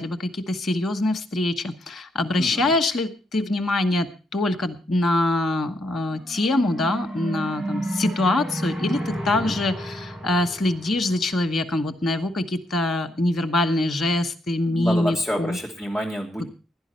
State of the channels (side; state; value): both; normal; correlation 0.77